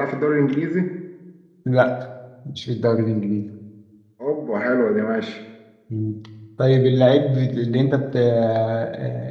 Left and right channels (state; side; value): identical; both; correlation 1.00